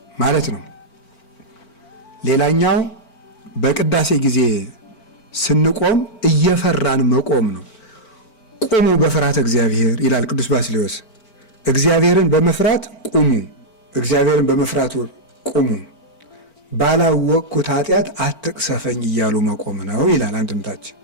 ማለት ነው። ሌላኛው በቅዳሴ ጊዜ ስንቆም እየፈራን መቆም ነው። ቁሙ በፍርሃተ እግዚአብሔር ይላል ቅዱስ ባስልዮስ። እግዚአብሔርን በመፍራት ቁሙ፣ እግዚአብሔርን በመፍራት ቁሙ፣ ባላወቅኩት ኃጢአት አትቅሰፈኝ እያሉ መቆም ነው ይላል አንድምታችን።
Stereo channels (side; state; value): right; late; 4.4 ms